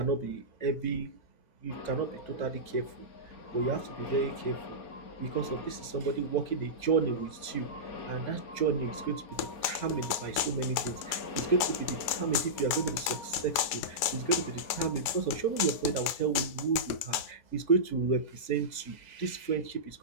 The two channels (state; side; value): late; right; 4.9 ms